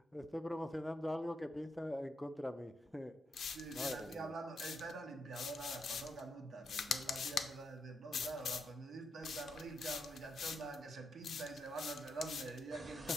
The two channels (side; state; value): both; normal; correlation 0.82